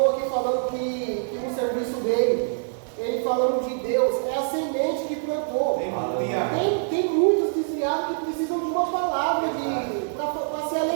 aqui falando que no serviço dele, ele falando de Deus, é a semente que plantou. Tem muitos desviados que precisam de uma palavra para se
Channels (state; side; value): silent; left; digital silence